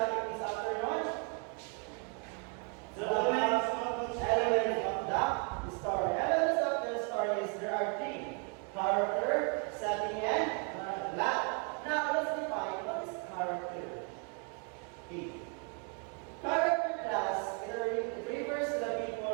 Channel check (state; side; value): quieter; left; 38.7 dB